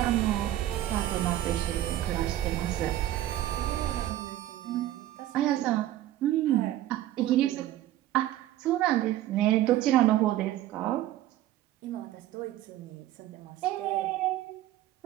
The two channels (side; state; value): left; quieter; 13.8 dB